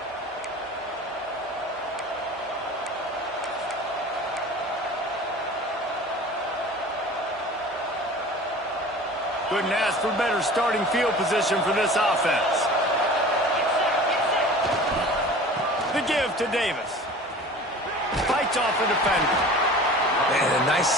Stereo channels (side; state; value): both; normal; correlation 0.41